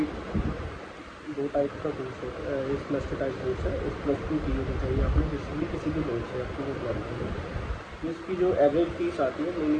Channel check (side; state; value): both; identical; correlation 1.00